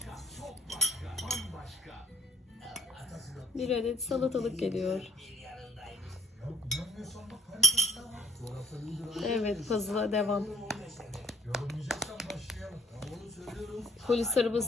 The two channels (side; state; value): both; normal; correlation 0.54